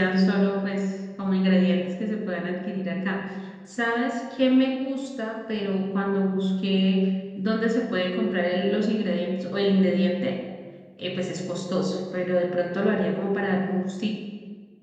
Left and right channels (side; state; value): both; identical; correlation 1.00